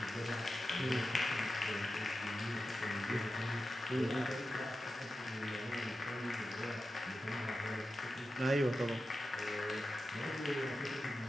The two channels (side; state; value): both; normal; correlation 0.91